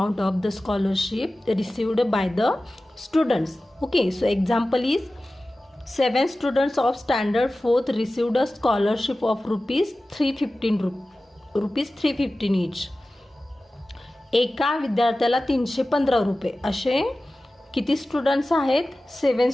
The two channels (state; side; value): normal; both; correlation 0.96